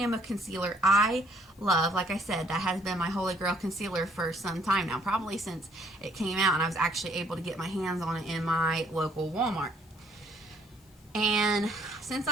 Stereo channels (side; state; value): left; noise; hiss, 30 dB below the sound